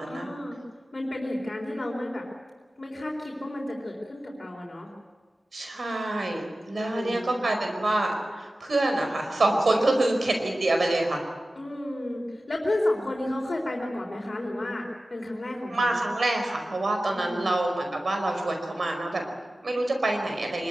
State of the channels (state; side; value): normal; both; correlation 0.95